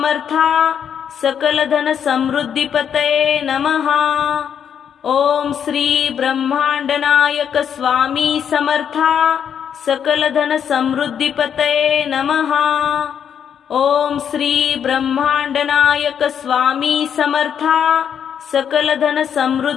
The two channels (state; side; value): quieter; right; 8.3 dB